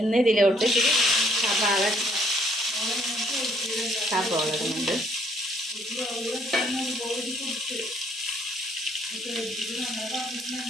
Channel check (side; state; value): both; normal; correlation 0.65